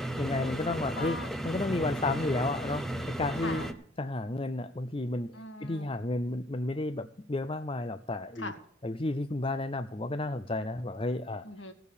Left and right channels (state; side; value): normal; both; correlation 0.60